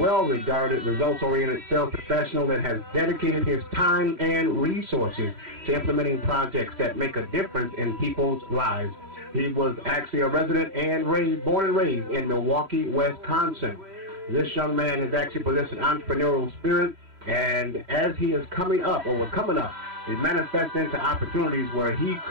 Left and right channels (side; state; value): left; late; 3.1 ms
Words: results-oriented sales professional that has dedicated his time and resources to implementing projects that make a difference in people's lives. He was actually a resident and born and raised in Milwaukee, Wisconsin. This young man has actually possessed an entrepreneurial spirit, and as he is coming up, or was coming up, it manifests into opportunities where he